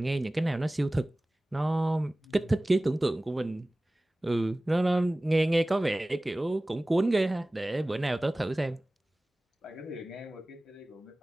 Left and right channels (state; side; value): normal; both; correlation 0.98